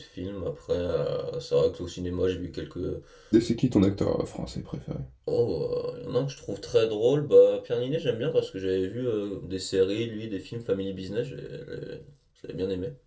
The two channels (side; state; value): both; identical; correlation 1.00